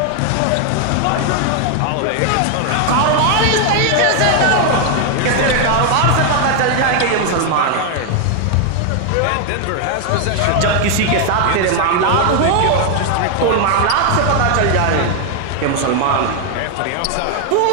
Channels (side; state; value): both; different; correlation 0.00